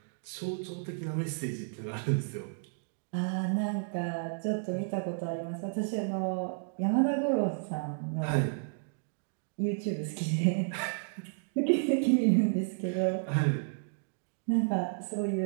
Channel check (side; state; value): left; silent; digital silence